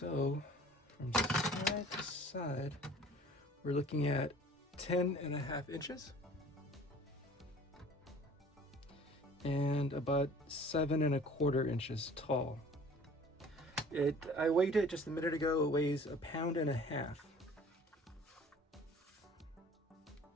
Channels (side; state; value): both; normal; correlation 0.48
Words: from side to side, we're looking at 10.5 inches and about 7.25 inches tall. I weighed it just a minute ago. It weighs 1.5 pounds.